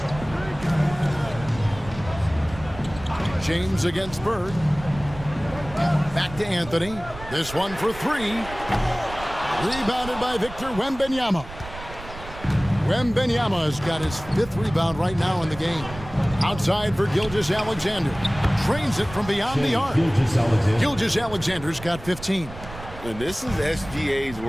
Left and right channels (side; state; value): right; noise; rumble, 14 dB below the sound